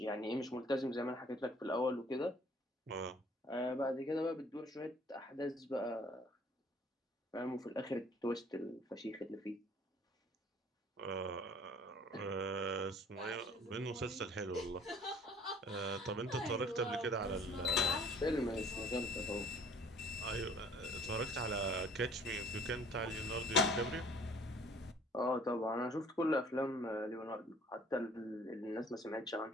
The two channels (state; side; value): normal; both; correlation 0.55